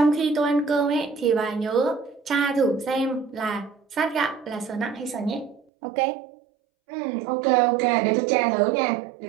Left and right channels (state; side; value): drops out; left; at 5.6 s